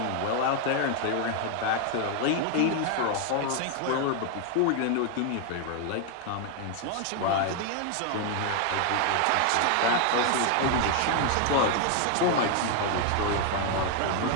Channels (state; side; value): different; both; correlation 0.01